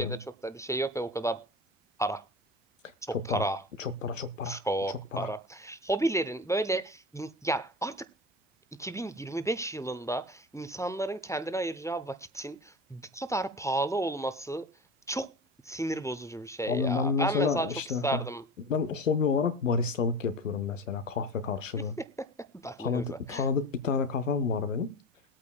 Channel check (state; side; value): normal; both; correlation 0.31